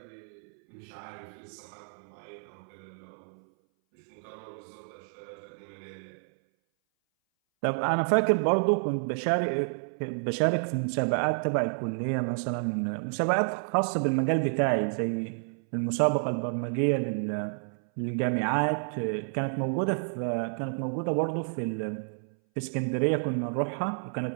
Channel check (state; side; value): silent; left; 58 dB below the other